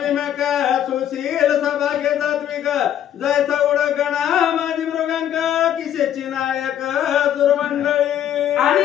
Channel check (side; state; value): right; quieter; 10.5 dB